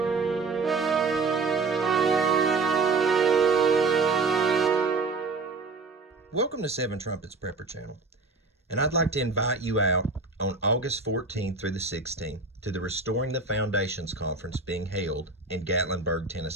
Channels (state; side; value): quieter; left; 3.9 dB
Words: to Seven Trumpets Prepper Channel, and I'd like to invite you out on August 14th through the 16th to the Restoring the Foundations Conference being held in Gatlinburg,